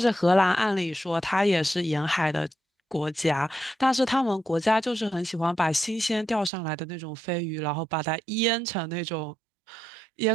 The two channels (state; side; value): drops out; left; at 6.5 s